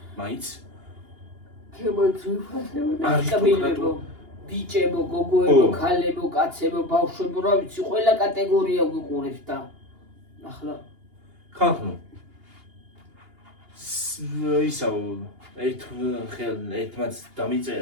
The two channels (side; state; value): left; late; 2.8 ms